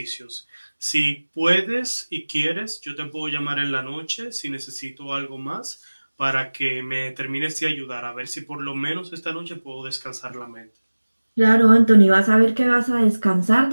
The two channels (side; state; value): both; inverted; correlation -1.00